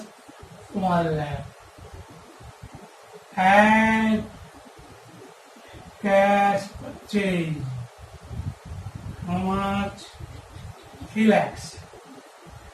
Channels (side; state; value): both; identical; correlation 1.00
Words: 1 lakh. And cash purchase. How much? 3 lakhs.